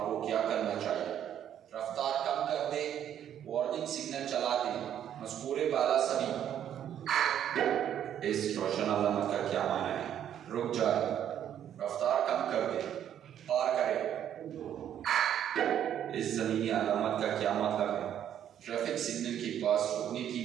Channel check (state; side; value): quieter; left; 10.1 dB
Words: क्या करना चाहिए? रफ्तार कम कर दे, वार्निंग सिग्नल चला दे। मज़कूरे बाला सभी। इस रोशन अलामत का क्या माना है? रुक जाए, रफ्तार कम कर दे, पार करे। इस ज़मीनी अलामत का क्या मतलब है? ट्रैफिक सिग्नल के पास रुकने की